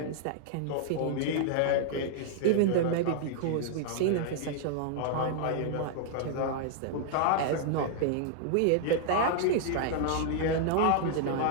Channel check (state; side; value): different; both; correlation -0.01